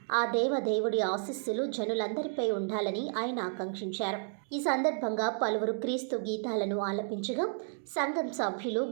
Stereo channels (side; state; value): left; silent; digital silence